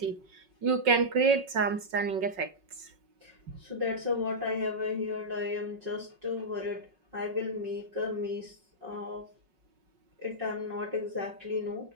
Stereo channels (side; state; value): left; late; 5.4 ms